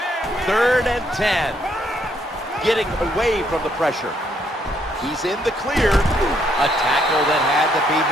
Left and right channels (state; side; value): normal; both; correlation 0.71